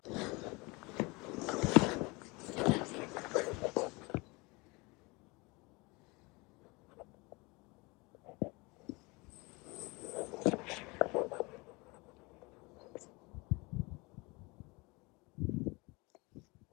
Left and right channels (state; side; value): quieter; right; 26.0 dB